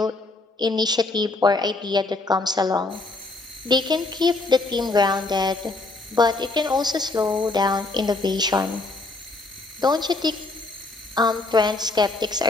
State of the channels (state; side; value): quieter; right; 3.3 dB